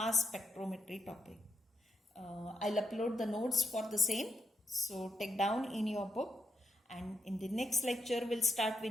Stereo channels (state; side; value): normal; both; correlation 0.81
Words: spectrometry topic. I'll upload the notes for the same, so take down in your book, and in the next lecture we'll start